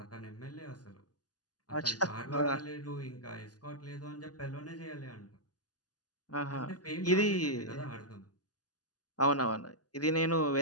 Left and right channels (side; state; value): right; late; 0.68 ms